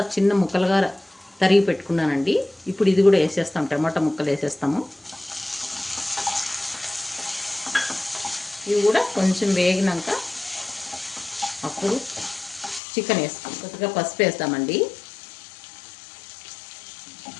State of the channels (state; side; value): drops out; right; at 12.8 s